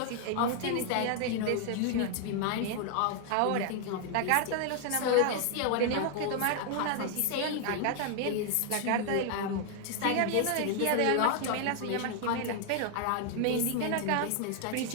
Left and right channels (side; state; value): both; different; correlation 0.00